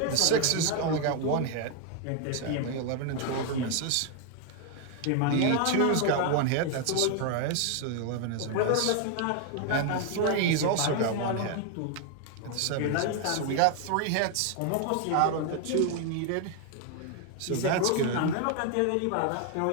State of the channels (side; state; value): both; different; correlation 0.00